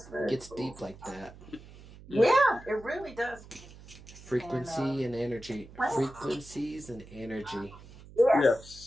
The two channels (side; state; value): right; noise; hum, 19 dB below the sound